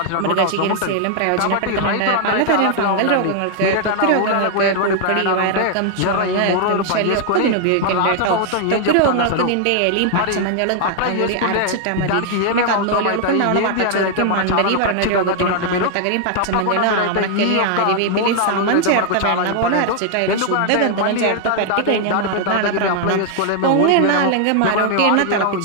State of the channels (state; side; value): different; both; correlation 0.00